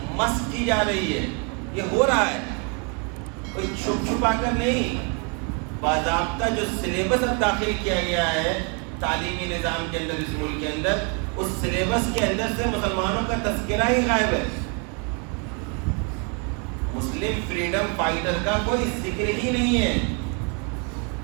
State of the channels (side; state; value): left; quieter; 34.7 dB